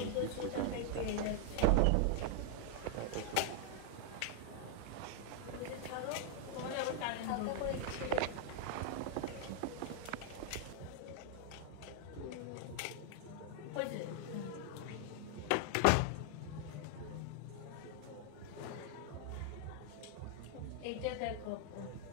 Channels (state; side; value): different; both; correlation 0.00